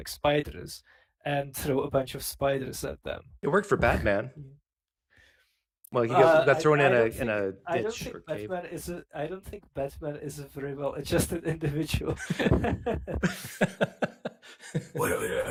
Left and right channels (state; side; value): identical; both; correlation 1.00